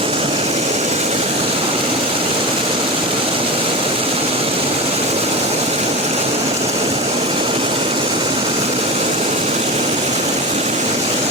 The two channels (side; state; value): both; normal; correlation 0.24